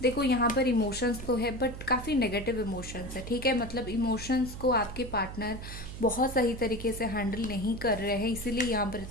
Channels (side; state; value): right; noise; hum, 10 dB below the sound